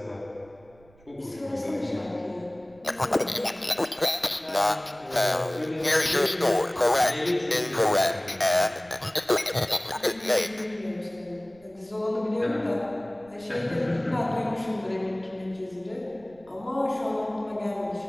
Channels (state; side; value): noise; right; rumble, 28 dB below the sound